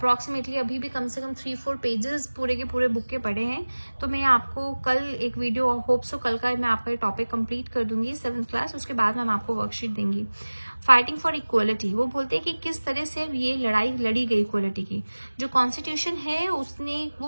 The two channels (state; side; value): inverted; both; correlation -1.00